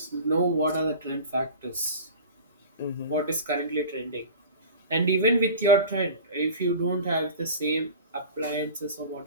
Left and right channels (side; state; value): both; inverted; correlation -0.36